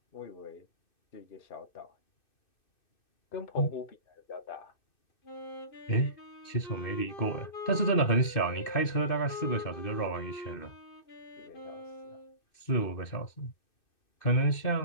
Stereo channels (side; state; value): right; late; 2.6 ms